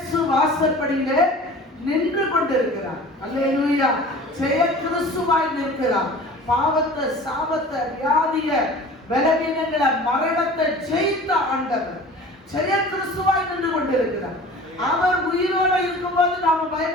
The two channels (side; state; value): both; normal; correlation 0.42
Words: வாசல் படியில நின்று கொண்டிருக்கிறார். அல்லேலூயா. ஜெய கிறிஸ்துவாய் நிற்கிறார். பாவத்தை, சாபத்தை, வியாதிய, பலவீனங்களை, மரணத்தை ஜெயித்த ஆண்டவர் ஜெய கிறிஸ்துவாய் நின்று கொண்டிருக்கிறார். அவர் உயிரோடு இருக்கும்போது நாம